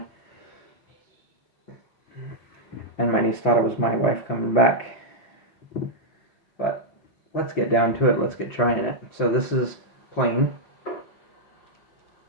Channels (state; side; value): late; right; 5.9 ms